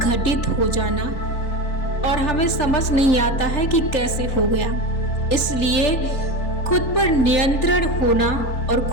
घटित हो जाना और हमें समझ नहीं आता है कि कैसे हो गया। इसलिए खुद पर नियंत्रण होना और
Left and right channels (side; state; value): right; late; 3.9 ms